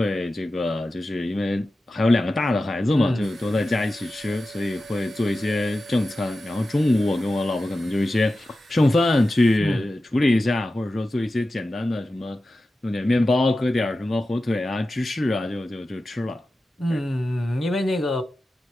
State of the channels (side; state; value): both; normal; correlation 0.93